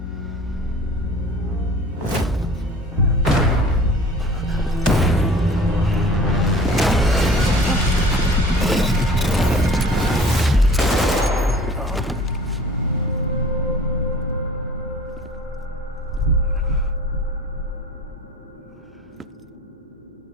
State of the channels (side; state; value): both; normal; correlation 0.45